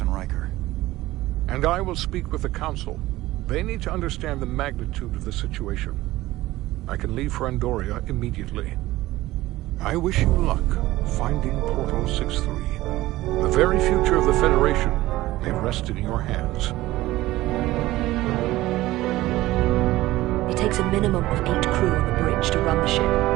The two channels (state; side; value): quieter; left; 17.1 dB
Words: Riker. And I will speak with the Council. They need to understand the magnitude of the situation. I can leave for Andoria immediately. I wish you luck finding Portal 6-3. The very future of the Federation may rest in your hands. It takes a minimum of 8 crew on the bridge to run the